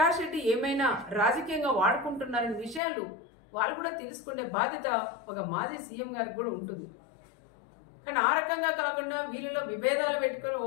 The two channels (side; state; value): right; drops out; at 2.8 s